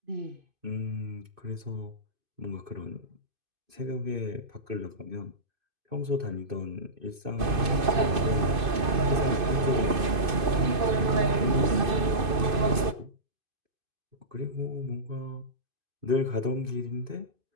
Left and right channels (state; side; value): late; left; 2.5 ms